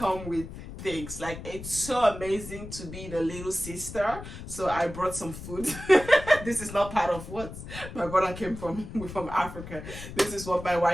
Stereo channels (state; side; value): noise; left; rumble, 11 dB below the sound